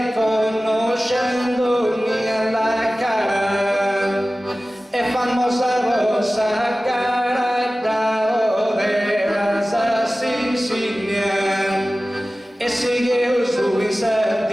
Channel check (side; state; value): both; normal; correlation 0.96